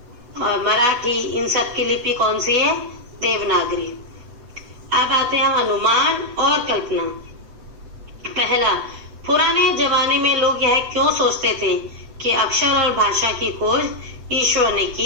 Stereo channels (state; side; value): late; left; 7.9 ms